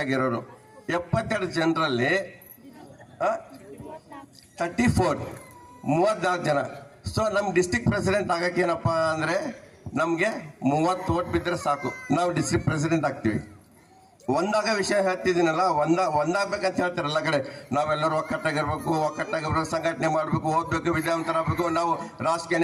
ಆಗಿರೋರು. 72 ಜನರಲ್ಲಿ 34 ಜನ. ಸೊ ನಮ್ಮ ಡಿಸ್ಟ್ರಿಕ್ಟ್ ಪ್ರೆಸಿಡೆಂಟ್ ಆಗಕ್ಕೆ ಏನಪ್ಪ ಅಂದರೆ ನಮಗೆ 30 ಓಟ್ ಬಿದ್ದರೆ ಸಾಕು, ನಾವು ಡಿಸ್ಟ್ರಿಕ್ಟ್ ಪ್ರೆಸಿಡೆಂಟ್ ಆಗ್ತೀವಿ. ಒಂದಾಗ ವಿಷಯ ಹೇಳ್ತಿದ್ದೀನಲ್ಲ, ಒಂದಾಗಬೇಕಂತ ಹೇಳ್ತಾರೆ ಎಲ್ಲ ಕಡೆ. ನಾವೆಲ್ಲರೂ ಒಕ್ಕಟ್ಟಾಗಿರ್ಬೇಕು, ಸಂಘಟನೆ ಮಾಡಬೇಕು, ಓದಬೇಕು, ವಿದ್ಯಾವಂತರಾಗಬೇಕು, ನಾವು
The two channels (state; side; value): identical; both; correlation 1.00